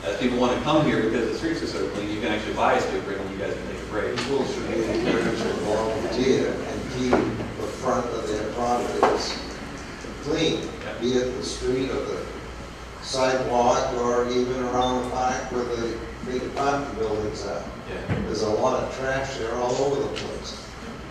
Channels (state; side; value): identical; both; correlation 1.00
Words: as people want to come here because the streets are so clean, you can actually buy a sweeper and you guys can take a break. People should be encouraged to volunteer and keep the front of their properties clean, be it the street or the sidewalk or even around the park where the big apartment buildings are. Yeah. There's a lot of trash there all over the place.